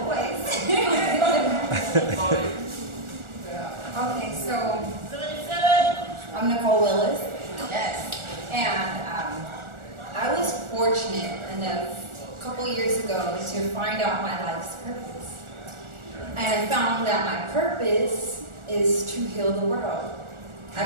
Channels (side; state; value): left; late; 1.4 ms